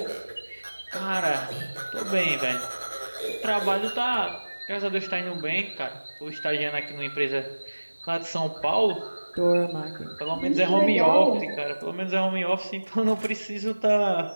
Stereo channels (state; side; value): inverted; both; correlation -1.00